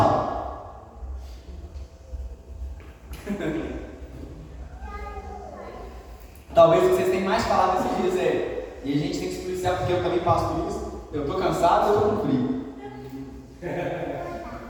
Talvez vocês tenham mais falado nesses dias e a gente tem que explicar porque eu também passo por isso. Eu estou cansado, eu estou com frio.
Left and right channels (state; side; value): identical; both; correlation 1.00